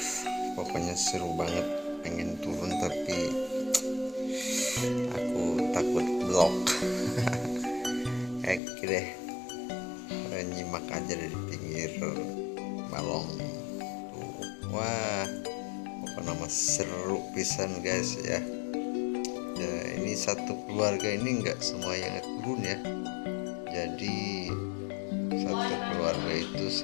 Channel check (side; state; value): right; drops out; at 8.6 s